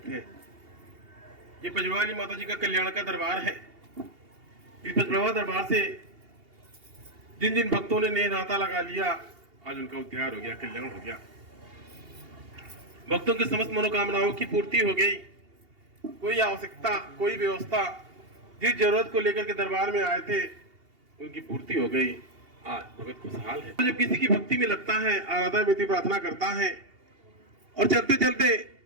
है। ये पचवाली माता जी का कल्याण का दरबार है। इस पचवाली दरबार से जिन जिन भक्तों ने नाता लगा लिया, आज उनका उद्धार हो गया, कल्याण हो गया। भक्तों की समस्त मनोकामनाओं की पूर्ति हो गई। कोई आवश्यकता, कोई व्यवस्था, जिस जरूरत को लेकर के दरबार में आए थे, उनकी पूर्ति हो गई। आज भगत खुशहाल है। जब किसी की भक्ति में लगता है, आराधना में प्रार्थना करता है और चलते चलते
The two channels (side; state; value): left; late; 2.8 ms